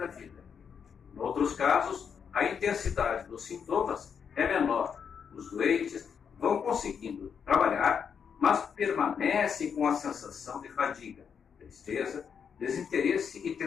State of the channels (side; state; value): right; quieter; 7.0 dB